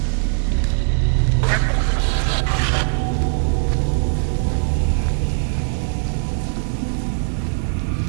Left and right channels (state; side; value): silent; left; digital silence